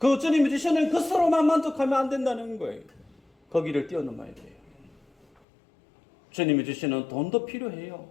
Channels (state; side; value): drops out; right; at 5.2 s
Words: 주님이 주시는 것으로만 만족하면 안 된다는 거예요. 거기를 뛰어넘어야 돼요. 주님이 주시는 돈도 필요해요.